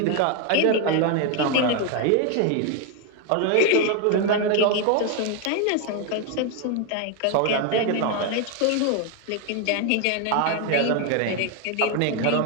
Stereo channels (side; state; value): both; different; correlation 0.01